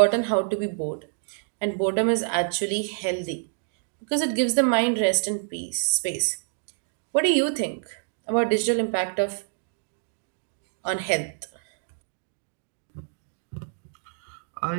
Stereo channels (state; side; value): silent; left; digital silence